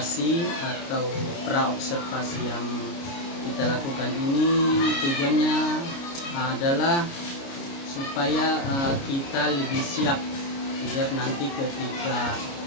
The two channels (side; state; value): right; late; 29 ms